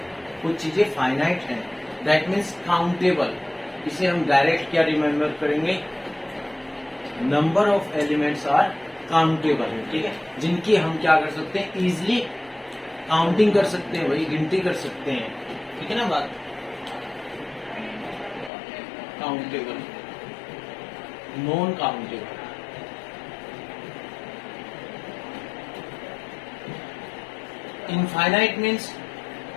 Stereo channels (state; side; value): drops out; right; at 18.5 s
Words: कुछ चीजें फाइनाइट हैं, दैट मीन्स काउंटेबल। इसे हम डायरेक्ट क्या रिमेम्बर करेंगे, number of elements are countable, ठीक है, जिनकी हम क्या कर सकते हैं, इजिली काउंटिंग कर सकते हैं, वही गिनती कर सकते हैं, ठीक है ना बात। Countable, non countable. Infinite means,